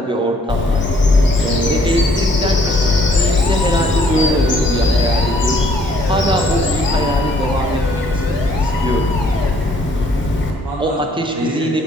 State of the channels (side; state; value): both; normal; correlation 0.63